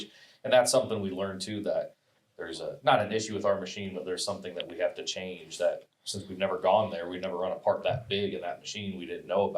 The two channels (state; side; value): identical; both; correlation 1.00